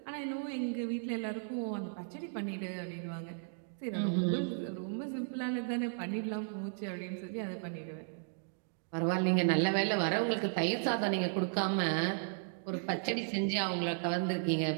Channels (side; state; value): left; silent; digital silence